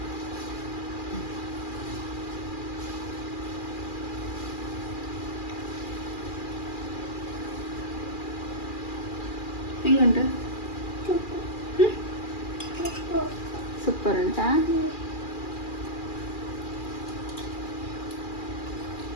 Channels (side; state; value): right; late; 2.4 ms